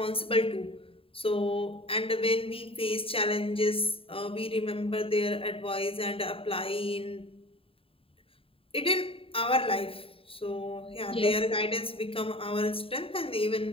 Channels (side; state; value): right; late; 0.27 ms